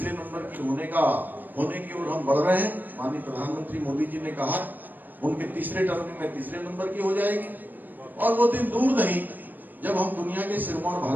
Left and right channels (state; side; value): late; left; 0.089 ms